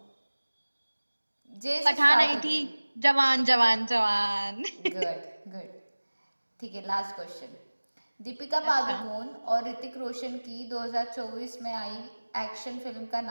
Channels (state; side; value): inverted; both; correlation -1.00